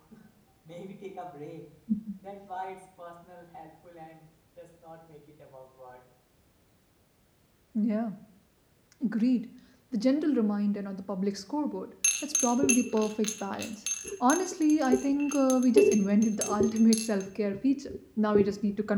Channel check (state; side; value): identical; both; correlation 1.00